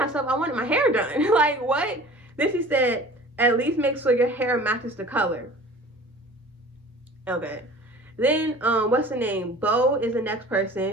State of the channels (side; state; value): both; normal; correlation 0.44